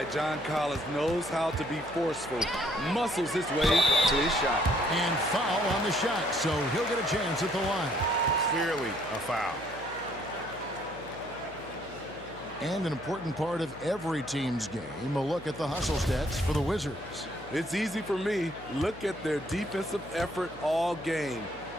John Collins knows how to be forceful. Muscles his way to his shot. And foul on the shot, so he'll get a chance at the line. Clearly a foul. And an important part of every team's game, a look at the hustle stats for the Wizards. It's easy for me. Look at their defensive effort all game.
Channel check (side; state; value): left; noise; hum, 18 dB below the sound